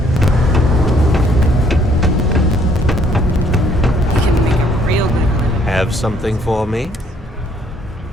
You can make a real good living. Have something for me?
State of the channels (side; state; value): both; normal; correlation 0.65